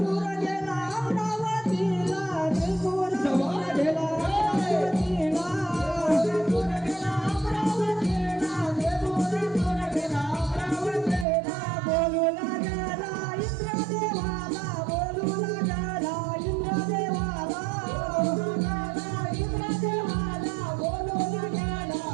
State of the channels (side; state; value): left; drops out; at 11.2 s